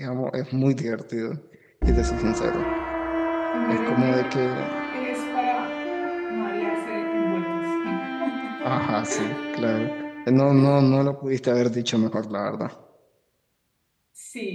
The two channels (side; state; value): both; identical; correlation 1.00